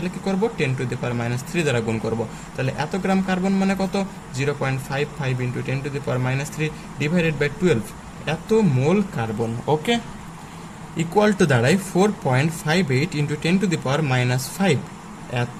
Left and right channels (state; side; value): identical; both; correlation 1.00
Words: কি করব? 10⁻³ দ্বারা গুণ করব। তাহলে এত গ্রাম কার্বন মানে কত? 0.55 × 10⁻³ ডিভাইডেড বাই 12, এত মোল কার্বন। ওকে, ইকুয়াল টু দাঁড়ায় 4.58 × 10⁻⁵,